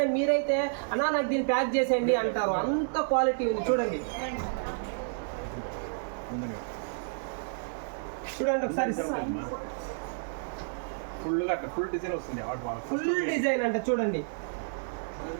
మీరైతే అన్నా నాకు దీన్ని ప్యాక్ చేసేయండి అంటారు, అంత క్వాలిటీ ఉంది. చూడండి చూడండి ఒకసారి, ఫుల్ డిజైన్ వస్తుంది. ఫుల్ డిజైన్ అంటే చూడండి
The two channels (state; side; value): silent; left; digital silence